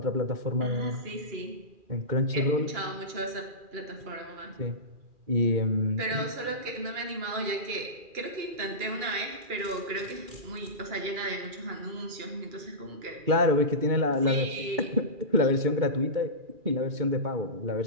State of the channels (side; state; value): left; late; 2.4 ms